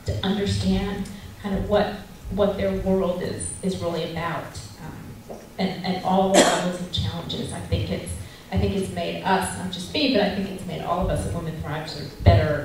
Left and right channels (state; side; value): identical; both; correlation 1.00